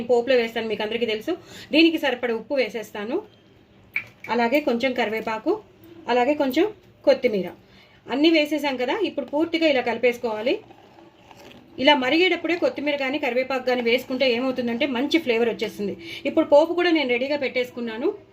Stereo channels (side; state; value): both; identical; correlation 1.00